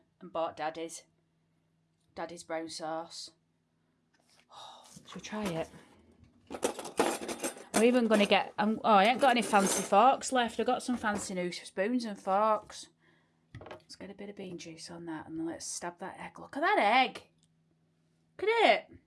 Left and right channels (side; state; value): both; identical; correlation 1.00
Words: and bought Daddy's brown sauce. Oh, should we try it? I'm even going to get... oh, I ain't got any fancy forks left. I've got some fancy new spoons and forks. Let's get a bit of bean juice on that and then let's stab that egg. Look at that egg. Look at it.